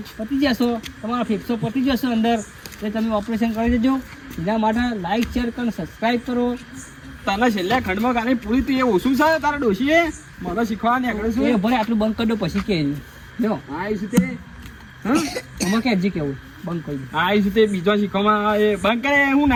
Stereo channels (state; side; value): identical; both; correlation 1.00